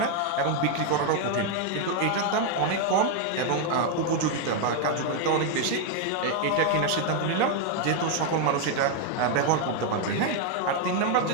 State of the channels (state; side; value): different; both; correlation 0.01